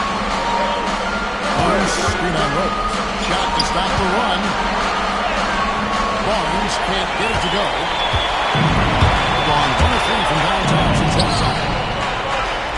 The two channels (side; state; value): both; identical; correlation 1.00